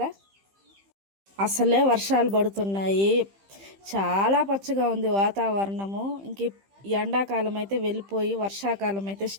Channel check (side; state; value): left; late; 15 ms